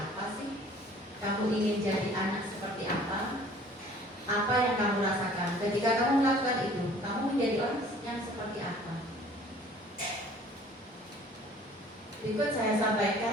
sih? Kamu ingin jadi anak seperti apa? Apa yang kamu rasakan ketika kamu melakukan itu? Kamu menjadi orang yang seperti apa? Berikut saya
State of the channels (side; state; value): both; normal; correlation 0.51